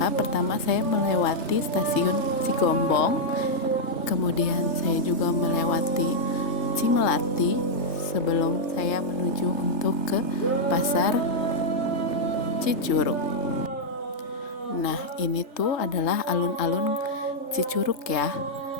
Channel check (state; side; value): late; right; 3.3 ms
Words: pertama saya melewati stasiun Cigombong, kemudian saya juga melewati Cimelati sebelum saya menuju untuk ke pasar Cicurug. Nah, ini tuh adalah alun-alun Cicurug ya.